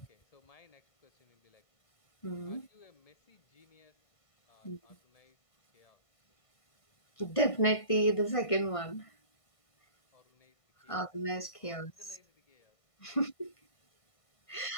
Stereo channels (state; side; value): late; right; 1.5 ms